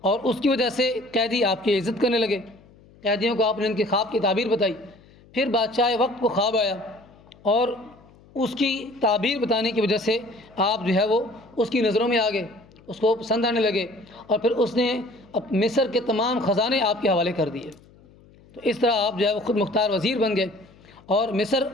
اور اس کی وجہ سے قیدی آپ کی عزت کرنے لگے۔ قیدیوں کو آپ نے ان کے خواب کی تعبیر بتائی۔ پھر بادشاہ وقت کو خواب آیا، اور اس کی تعبیر بتانے کی وجہ سے آپ جو ہے وہ اس کی نظروں میں آ گئے، اس کو پسند آنے لگے، اور پھر اس نے مصر کے تمام خزانے آپ کے حوالے کر دیے۔ تو اس طرح آپ جو ہے وہ خود مختار وزیر بن گئے اور مصر،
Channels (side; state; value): left; noise; hum, 26 dB below the sound